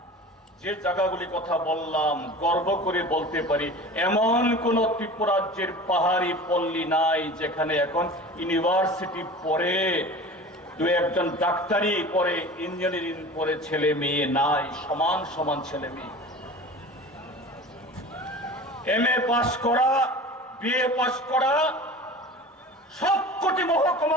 যে জায়গাগুলি কথা বললাম, গর্ব করে বলতে পারি এমন কোন ত্রিপুরা রাজ্যের পাহাড়ি পল্লী নাই যেখানে এখন ইউনিভার্সিটি পড়ে, দু একজন ডাক্তারি পড়ে, ইঞ্জিনিয়ারিং পড়ে ছেলে মেয়ে নাই, সমান সমান ছেলে মেয়ে। এমএ পাস করা, বিএ পাস করা, সবকটি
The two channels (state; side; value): normal; both; correlation 0.37